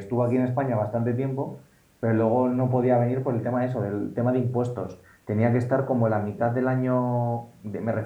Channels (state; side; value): identical; both; correlation 1.00